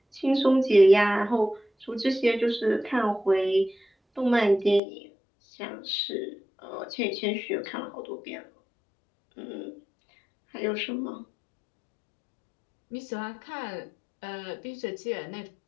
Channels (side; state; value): right; drops out; at 4.8 s